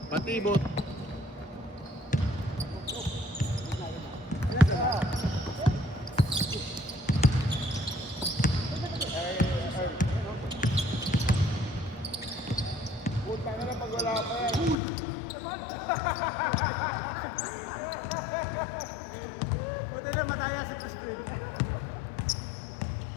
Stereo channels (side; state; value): right; drops out; at 14.8 s